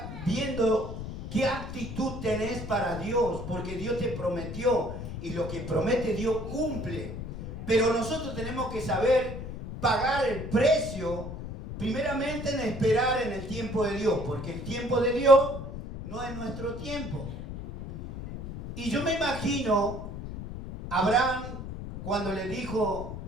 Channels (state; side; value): noise; left; rumble, 8 dB below the sound